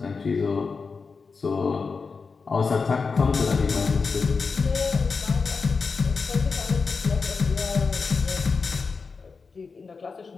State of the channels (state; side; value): quieter; right; 4.8 dB